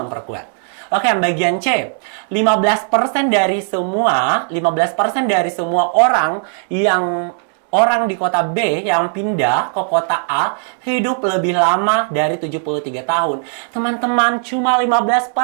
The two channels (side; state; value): left; silent; 58 dB below the other